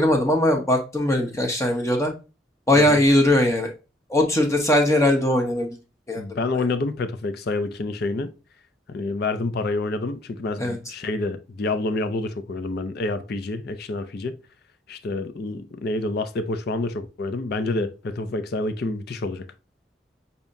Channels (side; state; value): both; normal; correlation 0.61